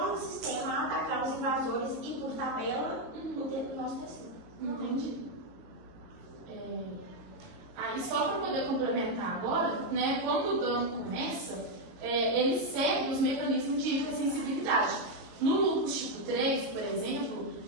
o sistema a atacar os invasores e, por tabela, o nosso tecido. Entendi. Aí, só para poder complementar agora, né, quando o dano começa, ele segue os mecanismos de hipersensibilidade. No lúpus tipo 3, por exemplo,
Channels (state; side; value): late; left; 22 ms